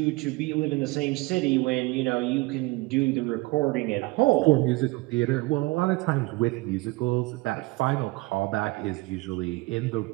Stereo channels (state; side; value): quieter; left; 22.8 dB